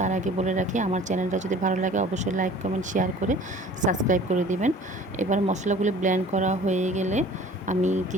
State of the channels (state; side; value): normal; both; correlation 0.47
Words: আগে বলে রাখি, আমার চ্যানেলটা যদি ভালো লাগে অবশ্যই লাইক, কমেন্ট, শেয়ার করে সাবস্ক্রাইব করে দিবেন। এবার মশলাগুলো ব্লেন্ড করা হয়ে গেলে আমি